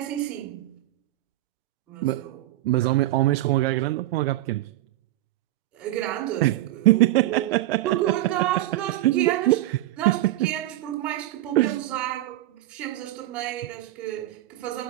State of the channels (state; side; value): quieter; left; 15.7 dB